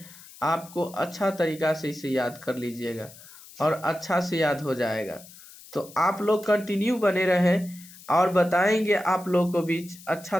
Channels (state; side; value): noise; left; hiss, 20 dB below the sound